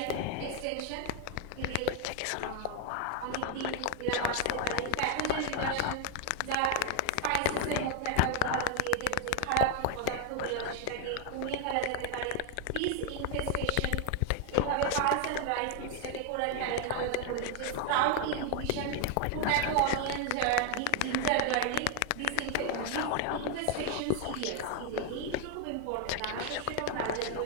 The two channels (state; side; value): different; both; correlation 0.01